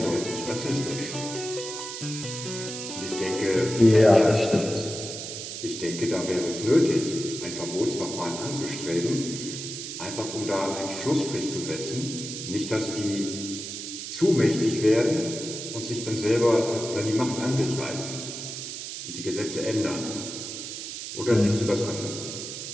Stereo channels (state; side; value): noise; right; hiss, 7 dB below the sound